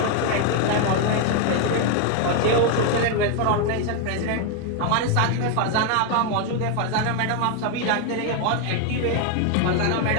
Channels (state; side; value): different; both; correlation 0.01